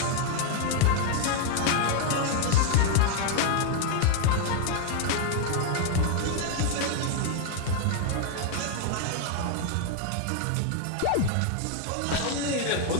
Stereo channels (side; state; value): both; different; correlation 0.00